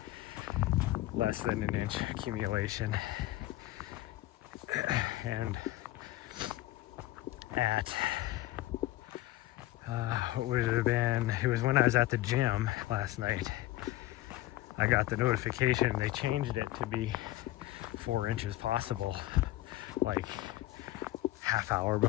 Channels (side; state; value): right; quieter; 16.4 dB